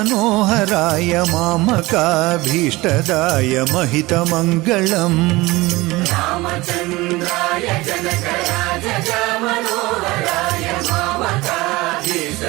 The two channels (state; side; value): quieter; left; 20.8 dB